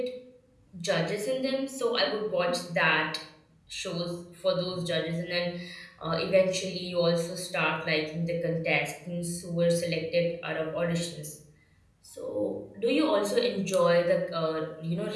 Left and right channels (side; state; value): both; identical; correlation 1.00